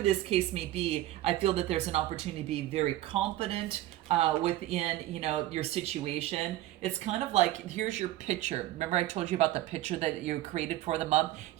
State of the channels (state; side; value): quieter; left; 14.9 dB